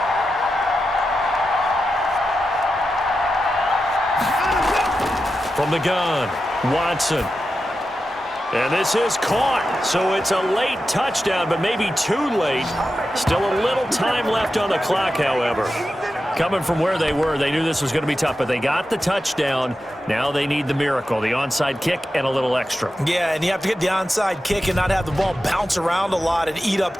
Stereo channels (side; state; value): both; normal; correlation 0.90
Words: From the gun, Watson. And this is caught, so it's a late touchdown, but maybe too late. Still a little time left on the clock, however. Coming from where they were, they knew this was going to be tough, but they got the touchdown. Now they need the miracle, the onside kick and a little extra. Yeah, and you have to get the onside kick and not have the ball bounce around a lot and eat up